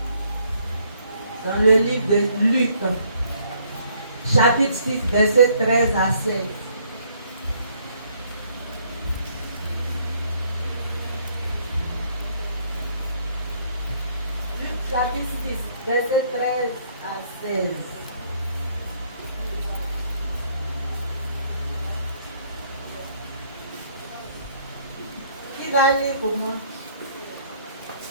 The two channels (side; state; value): both; inverted; correlation -0.66